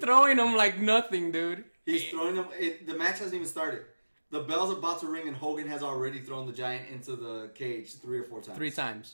him like nothing, dude? He's throwing them. The match hasn't even started. The bell's about to ring, and Hogan has already thrown the Giant into the cage 3 or 4 times. 3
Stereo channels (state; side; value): inverted; both; correlation -1.00